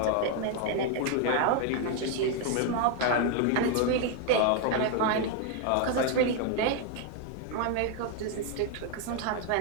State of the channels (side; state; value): both; different; correlation 0.01